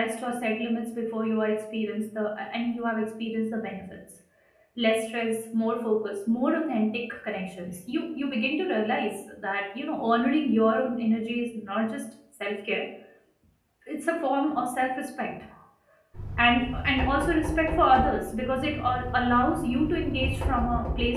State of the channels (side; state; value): both; identical; correlation 1.00